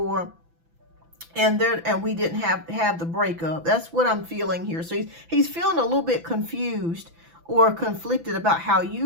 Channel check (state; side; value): late; left; 6.0 ms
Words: And we didn't have the breakup. That's what I'm feeling here. So he's feeling a little bit confused or conflicted about how